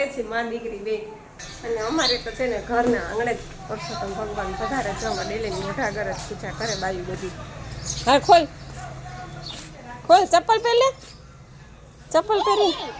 છીએ, મા દીકરી બે. અને અમારે તો છે ને ઘરના આંગણે જ પુરુષોત્તમ ભગવાન પધારે છે. અમે ડેલી મોઢા ઘર જ પૂજા કરે બાયું બધી. હા, ખોલ ખોલ, ચપ્પલ પહેલે, ચપ્પલ પહેરી.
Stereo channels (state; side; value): identical; both; correlation 1.00